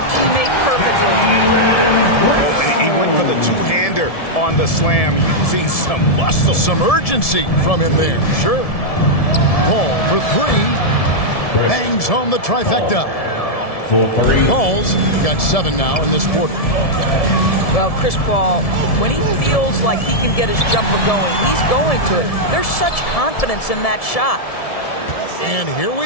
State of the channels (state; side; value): late; right; 1.7 ms